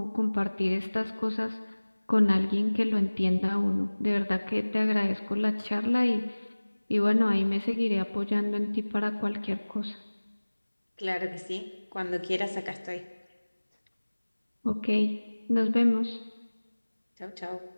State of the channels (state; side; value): inverted; both; correlation -1.00